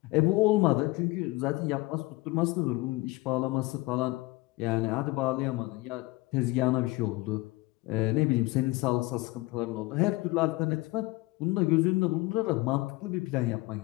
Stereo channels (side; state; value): right; quieter; 21.3 dB